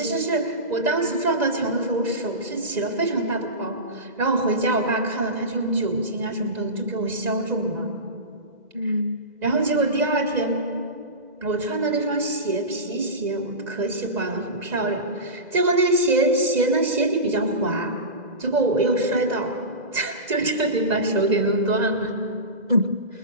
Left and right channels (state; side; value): late; left; 2.0 ms